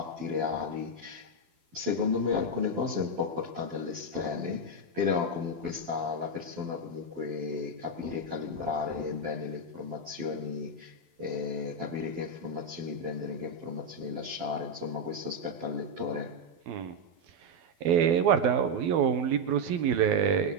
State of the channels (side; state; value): left; late; 12 ms